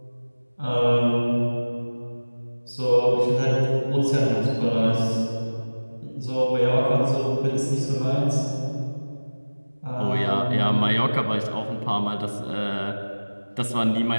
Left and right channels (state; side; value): inverted; both; correlation -1.00